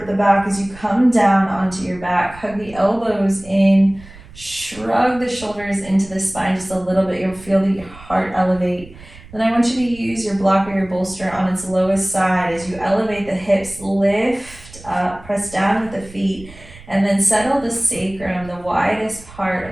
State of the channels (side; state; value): right; noise; rumble, 20 dB below the sound